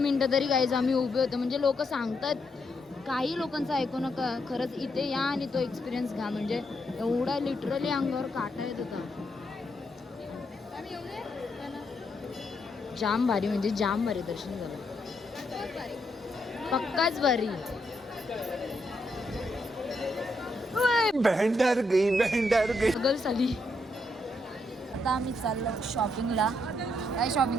मिनिटं तरी गाईज आम्ही उभे होतो. म्हणजे लोक सांगतात, काही लोकांचं ऐकू नका, खरंच इथे या आणि तो एक्सपिरियन्स घ्या. म्हणजे एवढा लिटरली अंगावर काटा येत होता. जाम भारी, म्हणजे जाम भारी दर्शन झालं. पक्काच भारी. बहंडर गई गल साली. आता आम्ही चाललो शॉपिंगला. काय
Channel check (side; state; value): both; normal; correlation 0.78